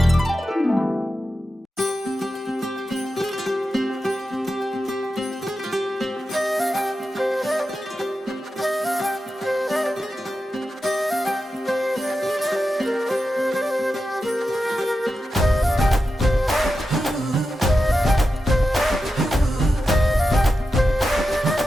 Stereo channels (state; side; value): normal; both; correlation 0.90